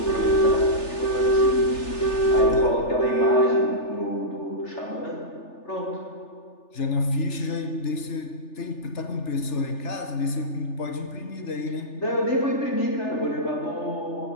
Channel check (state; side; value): late; right; 3.4 ms